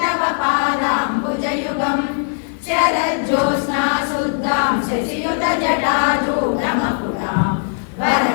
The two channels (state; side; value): silent; right; 67 dB below the other